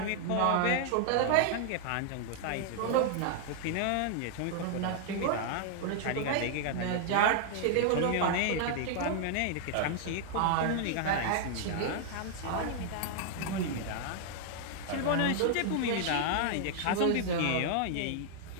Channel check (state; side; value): different; both; correlation 0.00